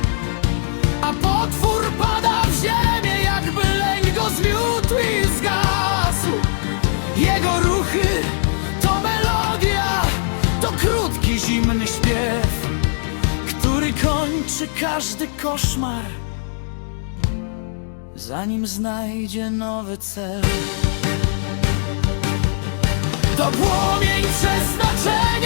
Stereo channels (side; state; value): right; silent; digital silence